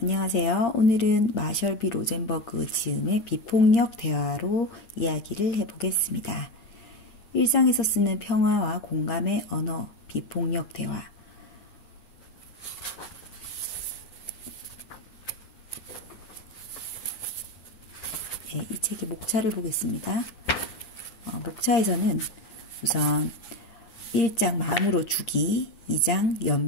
안녕하세요. 오늘은 마셜비 로젠버그 지음의 비폭력 대화로 이야기를 해보겠습니다. 일상에서 쓰는 평화와 공감의 언어, 비폭력 대화. 네, 이 책의 목차를 보겠습니다. 목차에서는 우선 1장 마음으로 주기, 2장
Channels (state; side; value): late; right; 9.7 ms